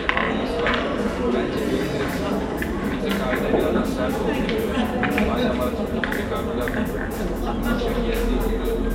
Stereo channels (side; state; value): both; identical; correlation 1.00